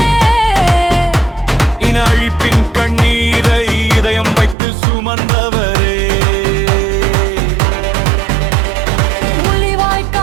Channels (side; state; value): left; drops out; at 4.5 s